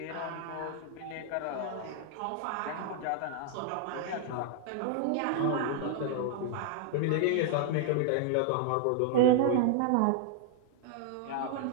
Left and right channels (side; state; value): both; different; correlation 0.00